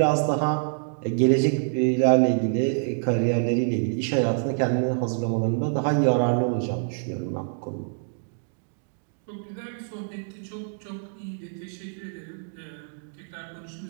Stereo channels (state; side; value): silent; left; digital silence